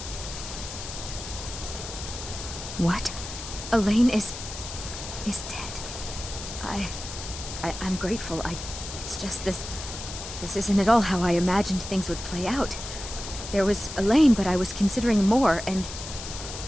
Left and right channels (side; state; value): left; noise; hiss, 9 dB below the sound